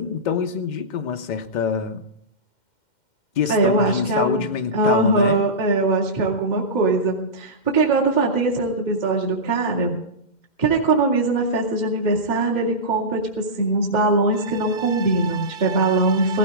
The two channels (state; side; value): late; right; 2.1 ms